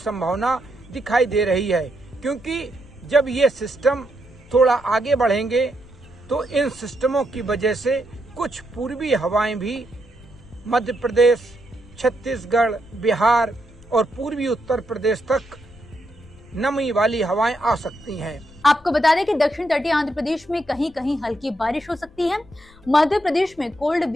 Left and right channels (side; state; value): left; noise; rumble, 25 dB below the sound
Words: दिखाई दे रही है, क्योंकि जब ये सिस्टम थोड़ा आगे बढ़ेंगे तो इन सिस्टमों की वजह से कुछ पूर्वी हवाएं भी मध्य प्रदेश, छत्तीसगढ़, बिहार और पूर्वी उत्तर प्रदेश तक नमी वाली हवाएं आ सकती हैं। आपको बता दें कि दक्षिण तटीय आंध्र प्रदेश में कहीं कहीं हल्की बारिश हो सकती है। मध्य प्रदेश में कोल्ड